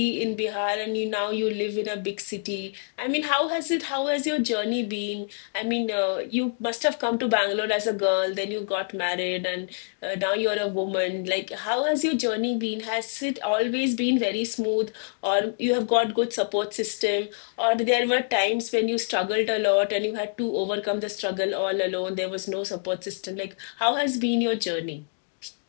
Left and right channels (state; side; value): silent; right; digital silence